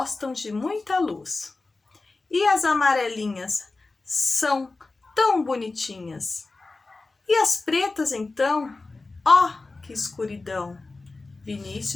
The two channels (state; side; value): quieter; right; 3.5 dB